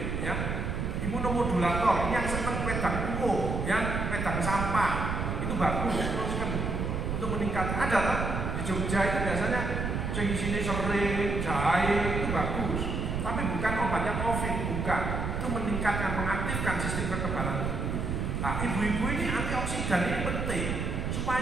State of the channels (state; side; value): noise; right; rumble, 2 dB below the sound